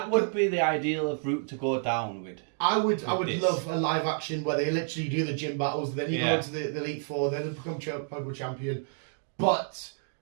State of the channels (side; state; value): left; silent; 58 dB below the other